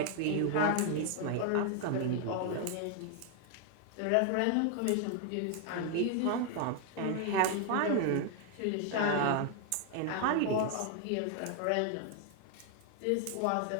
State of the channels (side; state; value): both; different; correlation 0.00